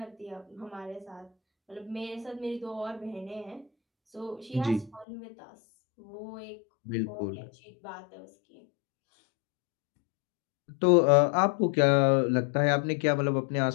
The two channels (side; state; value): right; drops out; at 5.1 s